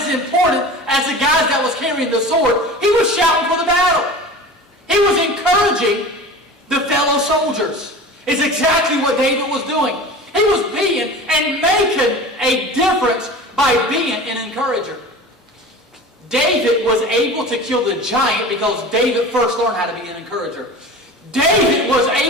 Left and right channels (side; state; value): both; normal; correlation 0.36